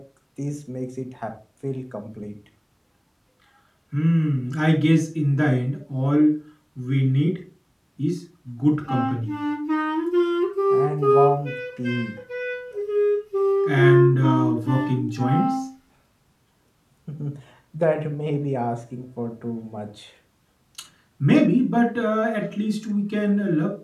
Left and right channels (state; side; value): identical; both; correlation 1.00